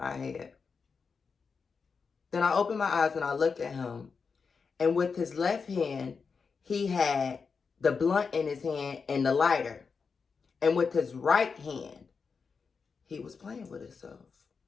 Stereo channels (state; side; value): quieter; right; 5.3 dB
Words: head. Then I opened my eyes and I looked at him. And with his left hand, he had the blunt in his hand and the lighter. And with his right hand, he was playing with himself.